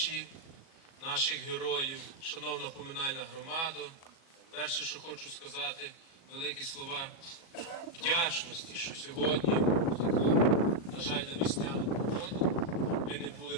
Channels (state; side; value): late; right; 37 ms